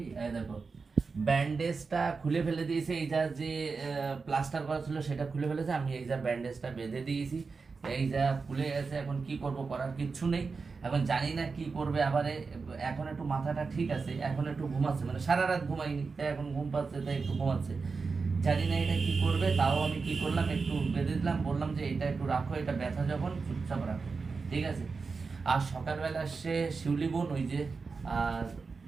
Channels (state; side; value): quieter; left; 4.6 dB